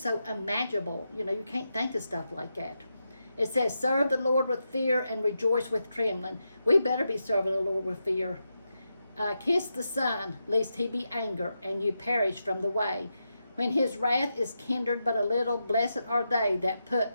so unimaginable. You can't think of stuff like that. It says, serve the Lord with fear and rejoice with trembling. We better be serving the Lord with fear. Kiss the Son, lest he be angry, and you perish from the way. When his wrath is kindled but a little, blessed are they that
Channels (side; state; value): both; inverted; correlation -0.87